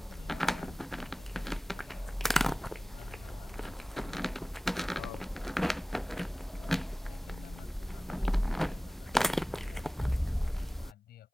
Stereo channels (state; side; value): normal; both; correlation 0.98